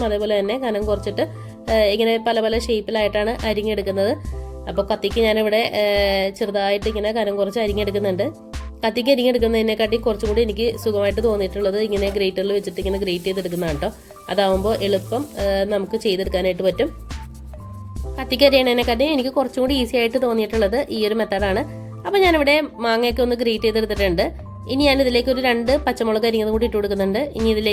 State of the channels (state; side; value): identical; both; correlation 1.00